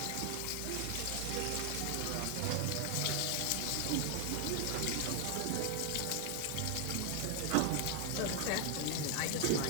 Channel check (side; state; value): both; different; correlation 0.00